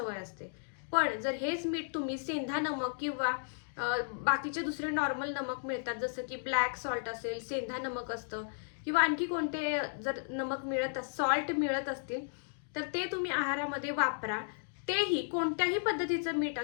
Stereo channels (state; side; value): silent; right; digital silence